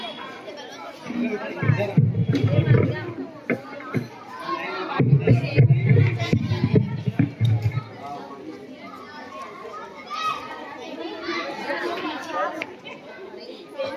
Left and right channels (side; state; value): both; identical; correlation 1.00